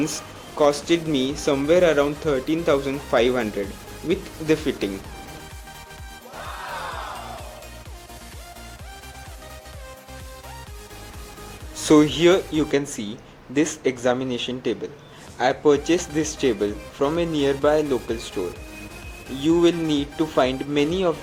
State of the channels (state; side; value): identical; both; correlation 1.00